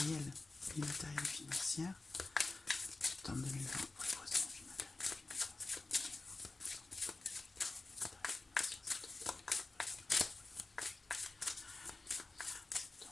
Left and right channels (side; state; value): right; quieter; 3.4 dB